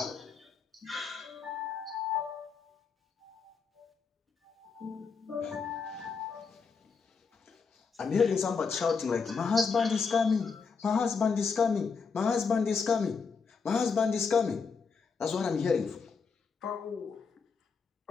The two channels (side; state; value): right; quieter; 5.3 dB